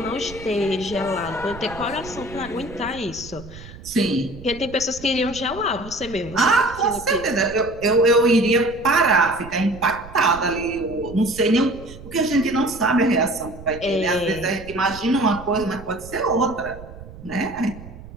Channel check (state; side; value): noise; right; rumble, 16 dB below the sound